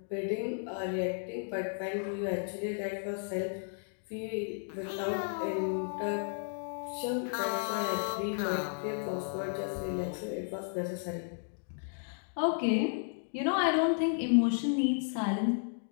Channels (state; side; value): silent; right; digital silence